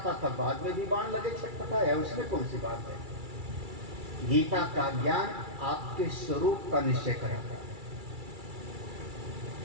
था, बाद में भी बाण लगे छटपटाया, उसमें कौन सी बात है? गीता का ज्ञान आपके स्वरूप का निश्चय कराता है।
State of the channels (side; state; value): left; late; 2.3 ms